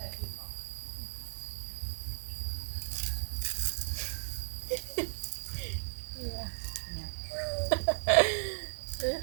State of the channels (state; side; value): silent; left; 54 dB below the other